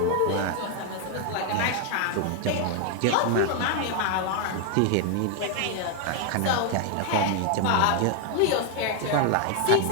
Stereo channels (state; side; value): different; both; correlation 0.01